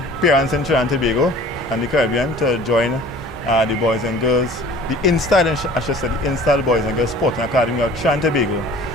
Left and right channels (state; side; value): normal; both; correlation 0.47